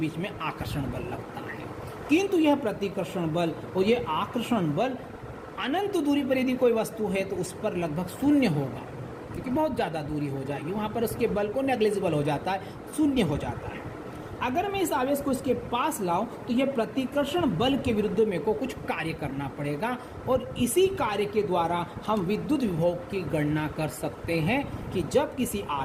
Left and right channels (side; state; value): both; identical; correlation 1.00